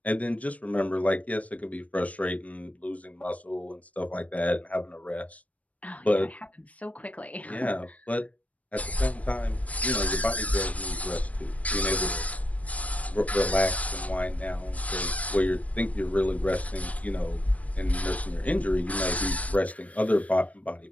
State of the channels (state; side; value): late; right; 0.068 ms